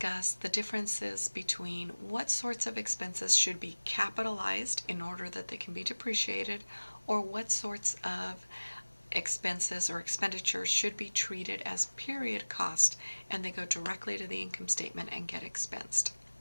the differences between what sorts of expenses should be capitalized in order that they can be depreciated, or what sorts of expenses or expenditures should be treated as period cost and they go directly to the income statement and get expensed.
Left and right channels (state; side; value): inverted; both; correlation -1.00